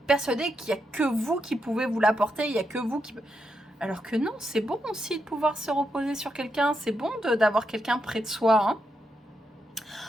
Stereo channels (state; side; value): normal; both; correlation 0.83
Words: persuadé qu'il n'y a que vous qui pouvez vous l'apporter, il n'y a que vous qui... Alors que non, c'est bon aussi de pouvoir se reposer sur quelqu'un, c'est bon d'avoir quelqu'un près de soi. Hein.